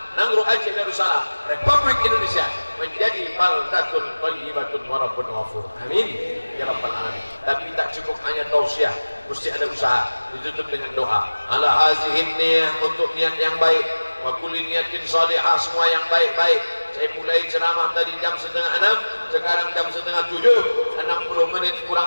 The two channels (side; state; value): both; inverted; correlation -1.00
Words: Nangro Aceh Darussalam, Republik Indonesia menjadi baldatun thayyibatun wa rabbun ghafur. Amin ya rabbal alamin. Tapi tak cukup hanya tausiah, mesti ada usaha. Ditutup dengan doa. Ala hazihin niyah, untuk niat yang baik, wa kulli niyatin salihah, semua yang baik-baik. Saya mulai ceramah tadi jam 5:30, sekarang jam 6:30, 60 menit kurang